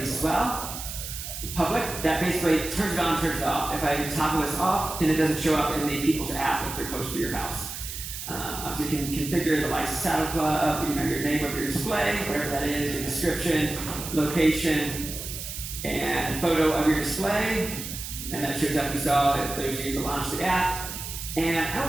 as well. Public, that basically turns it on, turns it off. If I toggle this off, then it doesn't show up in the people's app if they're close to your house. Obviously, you can configure the lights, saddle club, your name of your display, whatever that is, your description, location, and photo of your display. And that shows up, you saw that there's you to launch the app. And I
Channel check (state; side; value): noise; right; hiss, 8 dB below the sound